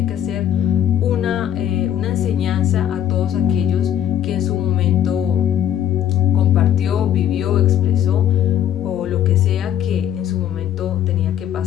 que hacer una enseñanza a todos aquellos que en su momento compartió, vivió, expresó o lo que sea que en su momento tenía que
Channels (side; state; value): right; quieter; 10.5 dB